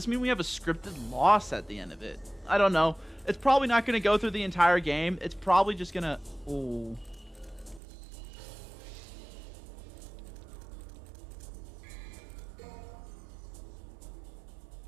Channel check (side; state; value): left; drops out; at 7.8 s